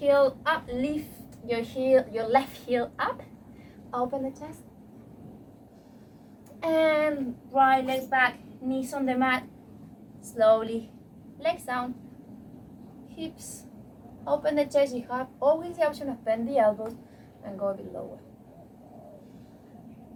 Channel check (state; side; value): identical; both; correlation 1.00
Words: up, lift your left heel up, open the chest, and right leg back, knees on the mat, slowly, legs down, hips, open the chest. You have always the option of bend the elbows and go a bit lower.